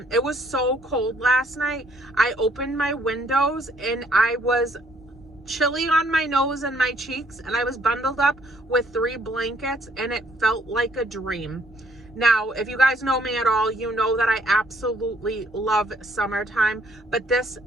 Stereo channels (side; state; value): both; normal; correlation 0.65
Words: it was so cold last night. I opened my windows and I was chilly on my nose and my cheeks, and I was bundled up with 3 blankets, and it felt like a dream. Now, if you guys know me at all, you know that I absolutely love summertime, but this